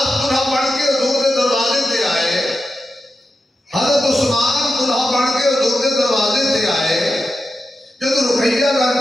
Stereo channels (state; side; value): normal; both; correlation 0.90